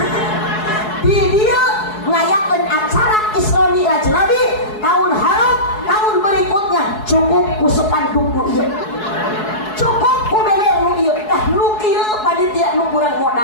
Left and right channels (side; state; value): right; late; 4.7 ms